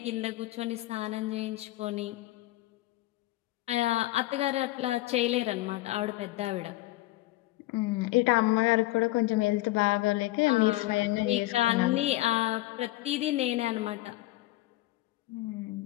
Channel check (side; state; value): right; quieter; 18.0 dB